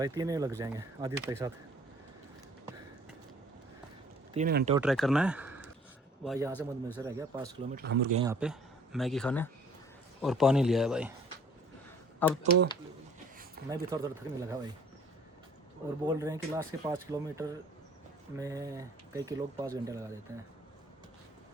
3 ही लग जाएंगे आदित्य के साथ। 3 घंटे और ट्रैक करना है भाई। यहाँ से मधुमेह से रह गया 5 किलोमीटर। हम रुक गए यहाँ पे मैगी खाने और पानी लिया है भाई। अब तो मैं भी थोड़ा थकने लगा भाई। और बोल रहे हैं कि लास्ट के 5 किलोमीटर में कई के लोग 5 घंटे लगा देते हैं,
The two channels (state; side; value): normal; both; correlation 0.54